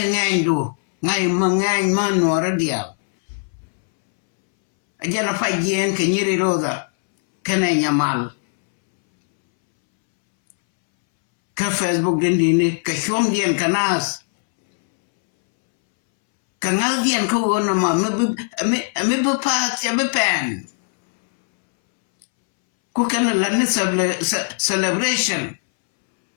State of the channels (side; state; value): right; silent; 65 dB below the other